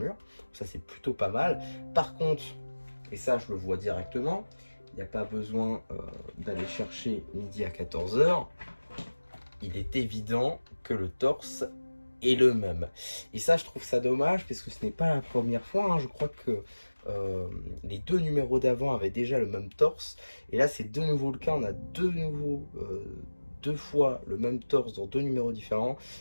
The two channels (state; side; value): inverted; both; correlation -1.00